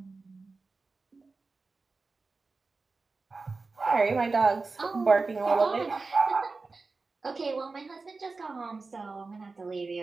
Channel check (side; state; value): left; quieter; 3.9 dB